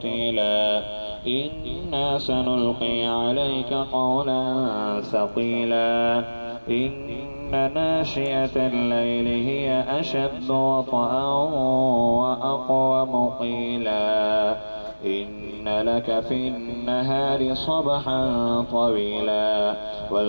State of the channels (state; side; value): inverted; both; correlation -1.00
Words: إنا سنلقي عليك قولا ثقيلا إن ناشئة الليل هي أشد وطئا وأقوم قيلا إن لك في النهار صبحا طويلا